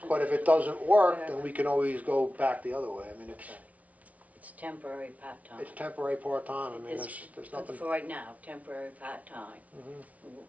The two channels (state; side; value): late; left; 0.069 ms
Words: but if it doesn't work, then we can always go back the other way. I mean, It's temporary part-time. it's temporary part-time, I mean, It's there's for nothing. right now, temporary part-time. Mhm.